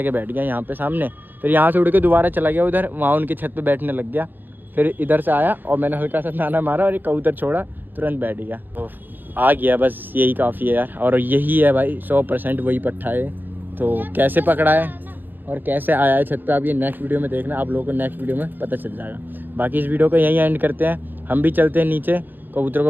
बैठ गया यहाँ पे सामने, फिर यहाँ से उड़ के दोबारा चला गया उधर, वहाँ उनकी छत पे बैठने लग गया। फिर इधर से आया और मैंने हल्का सा दाना मारा और एक कबूतर छोड़ा, तुरंत बैठ गया, तो आ गया, बस यही काफ़ी है यार। और यही है भाई 100% वही पट्टा है। तो कैसे पकड़ा है और कैसे आया है छत पे, आप ये नेक्स्ट वीडियो में देखना, आप लोगों को नेक्स्ट वीडियो में पता चल जाएगा। बाकी इस वीडियो को यहीं एंड करते हैं, हम भी चलते हैं नीचे कबूतरों को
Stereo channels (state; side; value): late; left; 0.090 ms